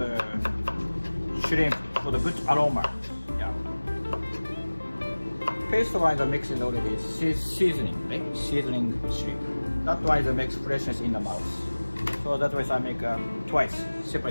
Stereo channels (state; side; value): inverted; both; correlation -1.00